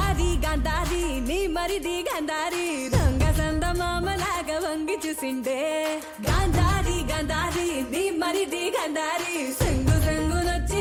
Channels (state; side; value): identical; both; correlation 1.00